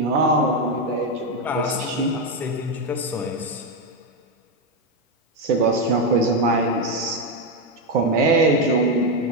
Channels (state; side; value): normal; both; correlation 0.07